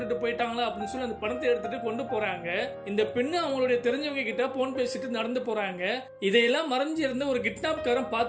போயிட்டாங்களா அப்படின்னு சொல்லி அந்த பணத்தை எடுத்துட்டு கொண்டு போறாங்க. இந்த பெண்ணு அவங்களுடைய தெரிஞ்சவங்க கிட்ட போன் பேசிட்டு நடந்து போறாங்க. இதையெல்லாம் மறைஞ்சு இருந்த ஒரு கிட்னாப்காரன்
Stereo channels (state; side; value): identical; both; correlation 1.00